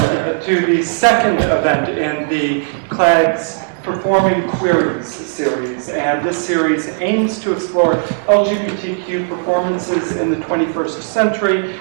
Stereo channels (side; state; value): left; silent; digital silence